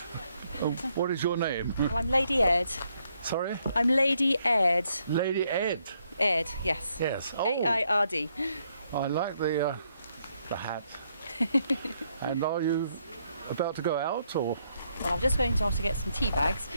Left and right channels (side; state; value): both; inverted; correlation -0.74